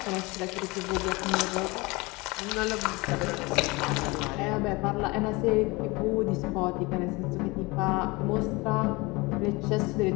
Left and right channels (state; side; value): quieter; right; 24.3 dB